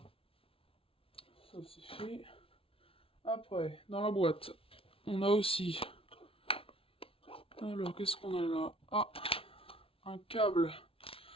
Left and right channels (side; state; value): right; late; 0.26 ms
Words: Ça c'est fait. Après, dans la boîte, on a aussi... Alors, qu'est-ce qu'on a là? Ah, un câble.